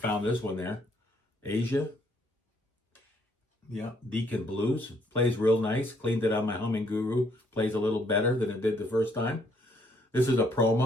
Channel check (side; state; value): both; normal; correlation 0.68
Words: this one there. Asia. Yeah, Deacon Blues. Plays real nice. Cleaned it on my Humming Guru. Plays a little better than it did the first time. This is a